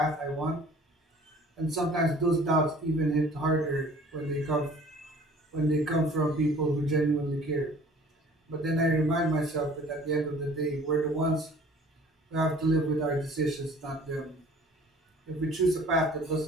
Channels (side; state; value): both; normal; correlation 0.50